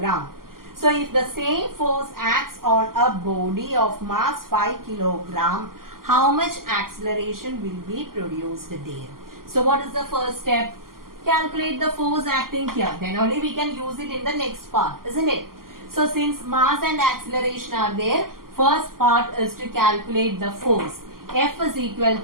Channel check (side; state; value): left; late; 0.92 ms